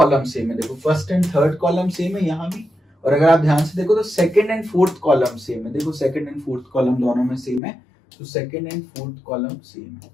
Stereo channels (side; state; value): right; drops out; at 7.6 s